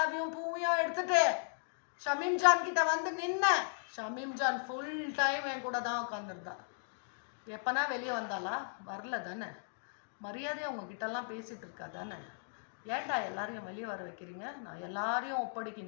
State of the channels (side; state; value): right; silent; digital silence